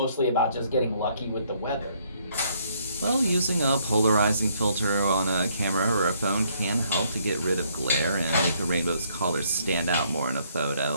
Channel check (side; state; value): both; inverted; correlation -0.68